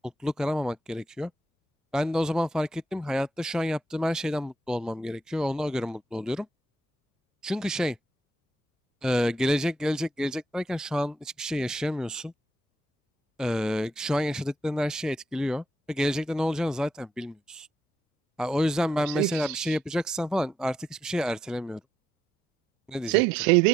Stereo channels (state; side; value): normal; both; correlation 0.74